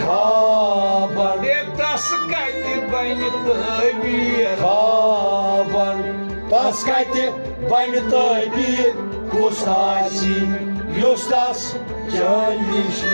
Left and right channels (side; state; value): both; inverted; correlation -1.00